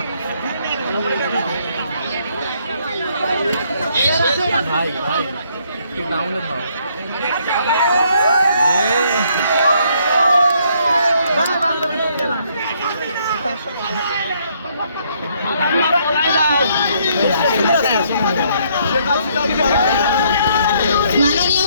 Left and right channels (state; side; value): inverted; both; correlation -0.68